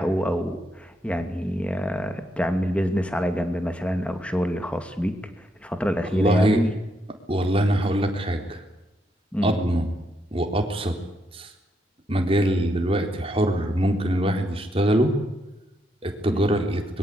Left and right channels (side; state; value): both; normal; correlation 0.78